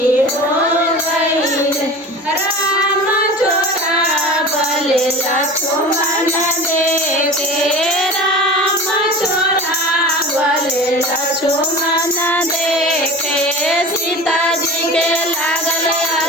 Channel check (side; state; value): both; normal; correlation 0.34